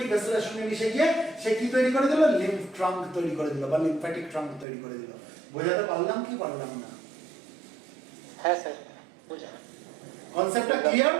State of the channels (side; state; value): left; drops out; at 4.7 s